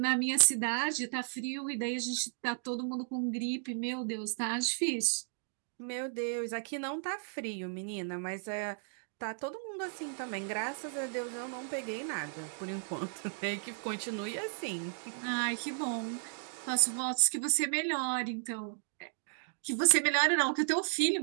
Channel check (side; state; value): left; silent; digital silence